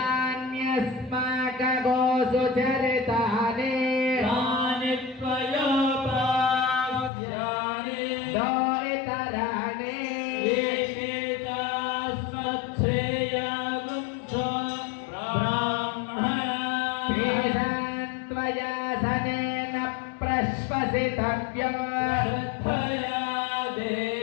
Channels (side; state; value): right; drops out; at 7.1 s